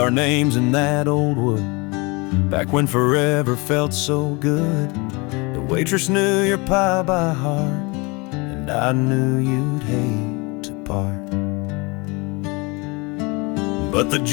names in that old wood back when forever felt so good. The waitress knew your pie by heart, and I knew you'd hate to part. But the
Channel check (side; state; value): right; quieter; 27.5 dB